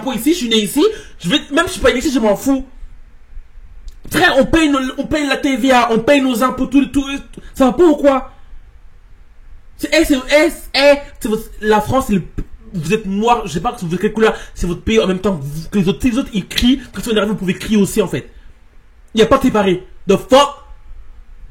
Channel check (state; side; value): identical; both; correlation 1.00